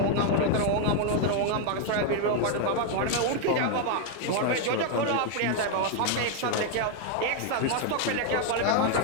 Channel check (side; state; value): both; different; correlation 0.00